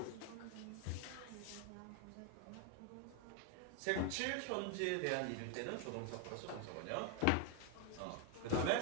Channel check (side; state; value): both; different; correlation 0.01